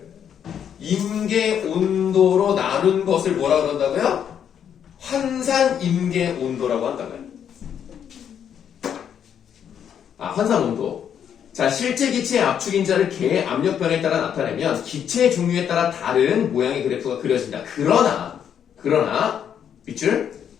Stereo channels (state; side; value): quieter; right; 8.7 dB